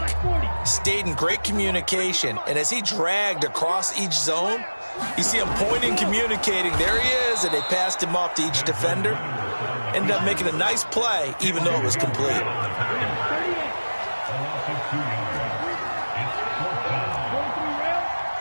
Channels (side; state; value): both; inverted; correlation -1.00